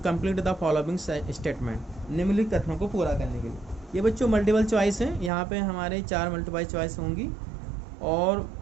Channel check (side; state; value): left; drops out; at 5.3 s